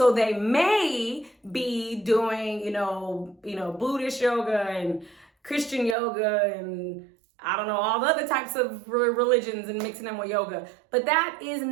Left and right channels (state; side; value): drops out; left; at 6.0 s